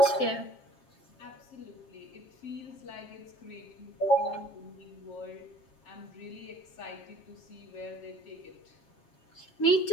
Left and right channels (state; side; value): late; right; 7.4 ms